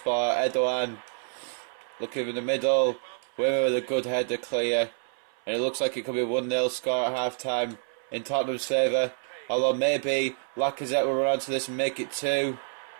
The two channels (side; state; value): left; silent; 59 dB below the other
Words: Erdogan looking in the middle. Wimmer with a good header clear. And it looks like it could be a 1-0 score at half time in Tottenham's favour. Although maybe Lacazette will run onto this and make it 2.